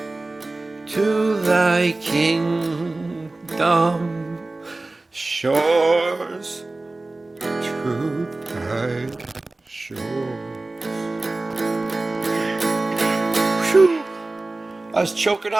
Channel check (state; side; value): quieter; left; 3.1 dB